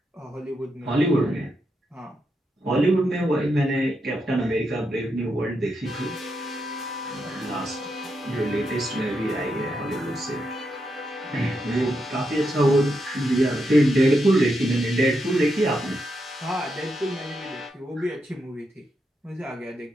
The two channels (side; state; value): both; normal; correlation 0.83